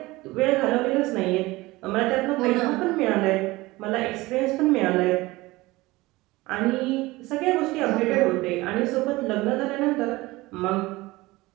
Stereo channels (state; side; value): quieter; left; 20.4 dB